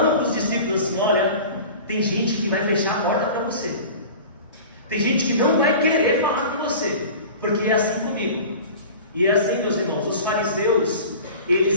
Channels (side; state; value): both; inverted; correlation -0.38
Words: para os discípulos assim: olha, tem gente que vai fechar a porta para você. Tem gente que não vai querer falar com você, porque é assim comigo. E é assim, meus irmãos, os fariseus,